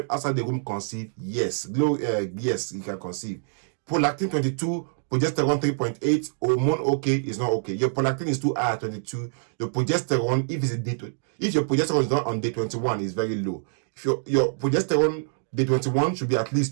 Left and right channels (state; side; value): silent; left; digital silence